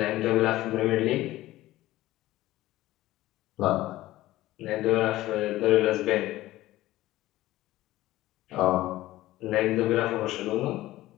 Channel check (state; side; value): quieter; right; 16.3 dB